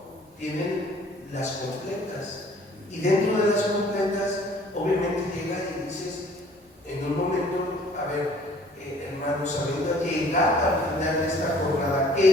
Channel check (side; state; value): both; normal; correlation 0.54